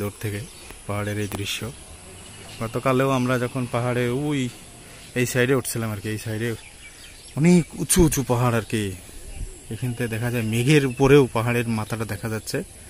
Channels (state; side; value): identical; both; correlation 1.00